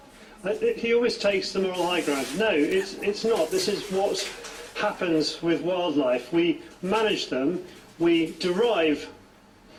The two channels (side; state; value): both; identical; correlation 1.00